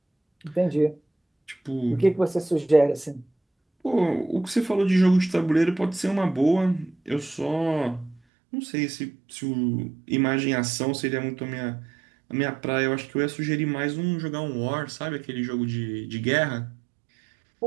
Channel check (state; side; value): drops out; left; at 8.2 s